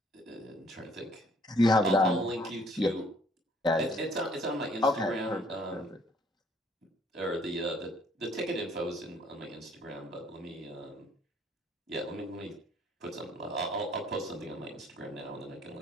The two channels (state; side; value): normal; both; correlation 0.62